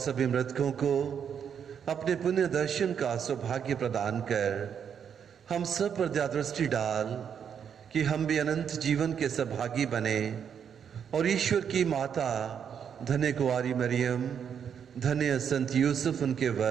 मृतकों को अपने पुण्य दर्शन का सौभाग्य प्रदान कर हम सब पर दया दृष्टि डाल कि हम भी अनंत जीवन के सौभागी बने और ईश्वर की माता धन्य कुंवारी मरियम, धन्य संत यूसुफ उनके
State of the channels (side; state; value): left; quieter; 7.8 dB